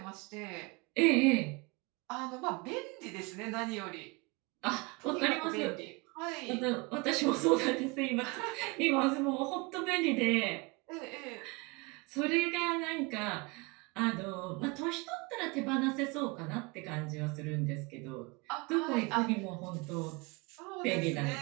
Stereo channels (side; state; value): left; quieter; 27.3 dB